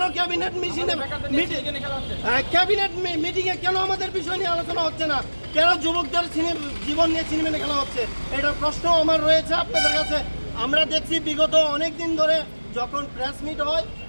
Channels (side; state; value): both; inverted; correlation -1.00